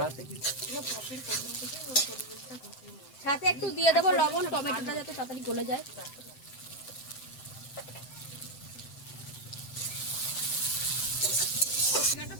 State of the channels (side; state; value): right; late; 7.8 ms